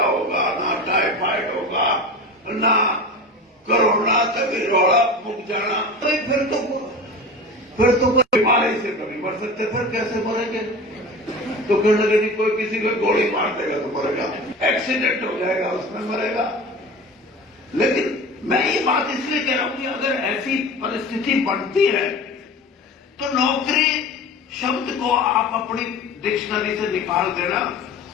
ना टाइफाइड होगा, ना कोरोना तक रोड़ा मुक जाना। तो फिर तो कोई बीमारी से कभी मर सकते, फिर कैसे मरेंगे? तो फिर लगे नहीं, कोई किसी को गोली मार देगा तो मरेगा, एक्सीडेंट हो जाएगा उसमें मरेगा। लेकिन मैं ये बात इसलिए कह रहा हूं कि अगर ऐसी परिस्थिति बनती है तो नौकरी शब्द को आप अपनी डिक्शनरी से निकाल देना।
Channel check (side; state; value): both; normal; correlation 0.33